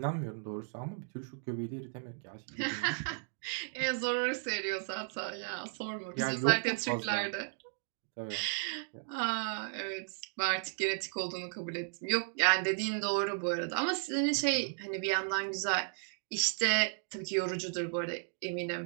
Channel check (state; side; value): silent; left; digital silence